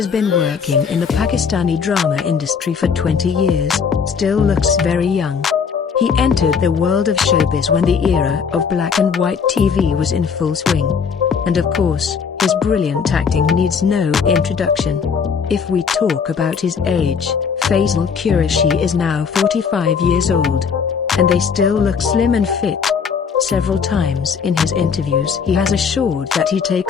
been working in the Pakistani drama industry for 20 years, still looks very young. He entered the world of showbiz when the era of black and white TV was in full swing. And of course, his brilliant acting needs no introduction. If we talk about his age, Faisal Qureshi is now 45 years old. And they still look slim and fit. Several times in his interviews he has assured that he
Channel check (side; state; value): right; quieter; 6.2 dB